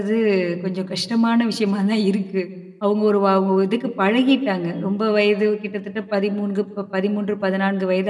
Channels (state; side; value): identical; both; correlation 1.00